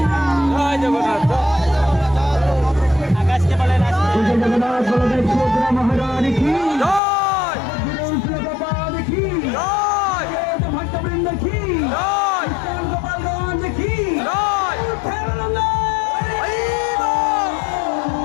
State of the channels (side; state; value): right; drops out; at 7.0 s